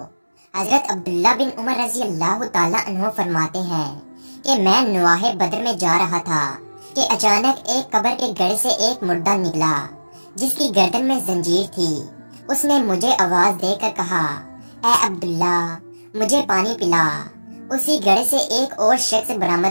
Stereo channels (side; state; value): both; inverted; correlation -1.00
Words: حضرت عبداللہ بن عمر رضی اللہ تعالیٰ عنہ فرماتے ہیں کہ میں نواح بدر میں جا رہا تھا کہ اچانک ایک قبر کے گڑھ سے ایک مردہ نکلا جس کی گردن میں زنجیر تھی۔ اس نے مجھے آواز دے کر کہا، اے عبداللہ مجھے پانی پلا۔ اسی گڑھ سے ایک اور شخص